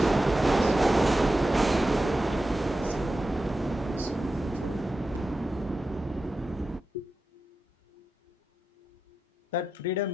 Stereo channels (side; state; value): both; normal; correlation 0.91